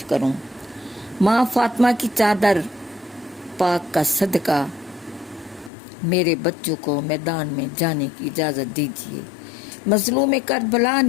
کروں؟ ماں فاطمہ کی چادر پاک کا صدقہ میرے بچوں کو میدان میں جانے کی اجازت دیجیے۔ مظلوم کربلا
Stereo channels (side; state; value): right; drops out; at 5.7 s